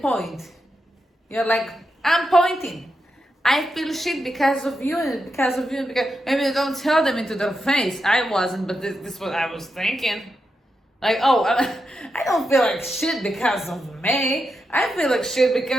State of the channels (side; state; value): both; normal; correlation 0.86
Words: point. You're like, I'm pointing. I feel shit because of you and because of you. And because maybe you don't tell them into their face. I wasn't, but this is what I was thinking. Like, oh, I don't feel like shit because of me. I feel like shit